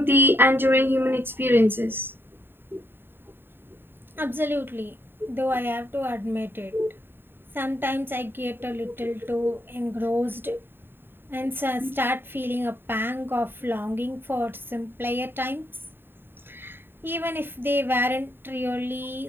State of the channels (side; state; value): left; late; 0.10 ms